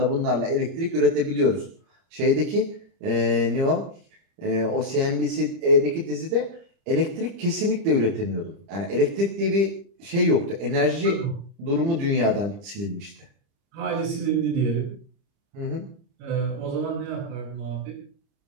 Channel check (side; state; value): left; late; 30 ms